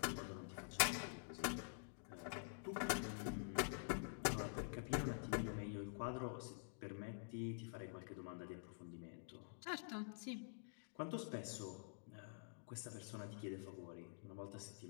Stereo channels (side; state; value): right; silent; digital silence